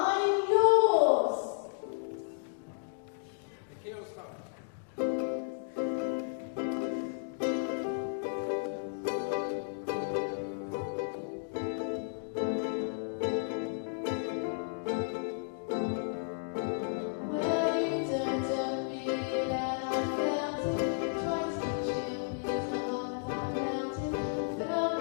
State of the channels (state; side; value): silent; right; digital silence